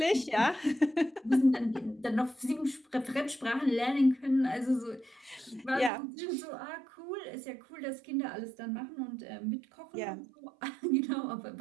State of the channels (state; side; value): drops out; left; at 5.9 s